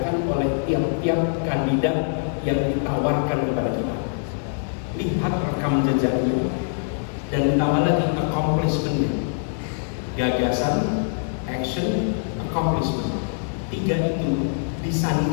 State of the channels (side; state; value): right; silent; digital silence